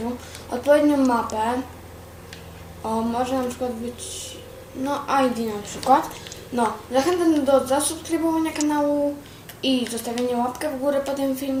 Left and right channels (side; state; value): both; identical; correlation 1.00